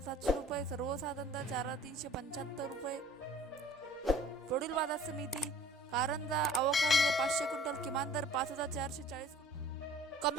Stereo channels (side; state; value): both; normal; correlation 0.50